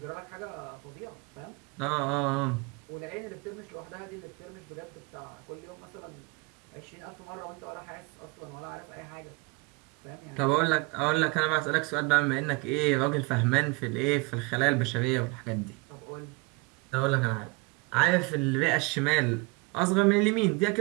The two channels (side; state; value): left; quieter; 27.4 dB